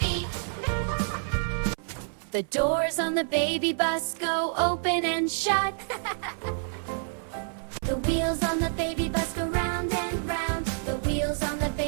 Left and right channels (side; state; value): left; silent; 56 dB below the other